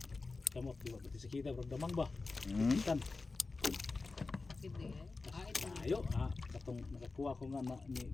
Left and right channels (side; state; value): right; quieter; 3.8 dB